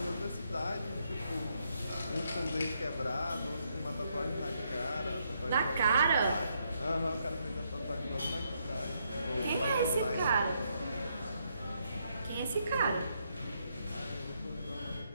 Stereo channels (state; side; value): inverted; both; correlation -0.76